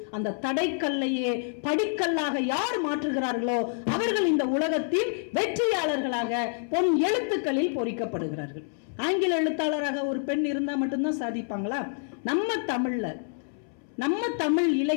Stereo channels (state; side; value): silent; right; 60 dB below the other